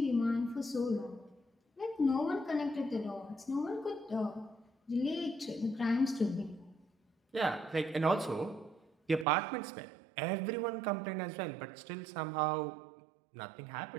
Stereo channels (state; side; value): drops out; left; at 9.2 s